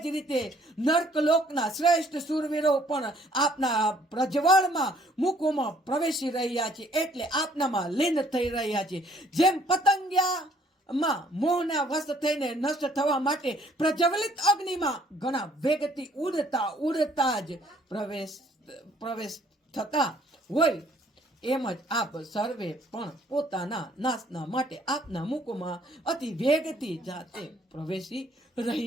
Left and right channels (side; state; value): both; normal; correlation 0.62